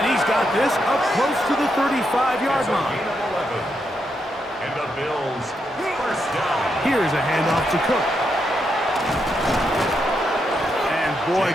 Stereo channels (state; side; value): normal; both; correlation 0.81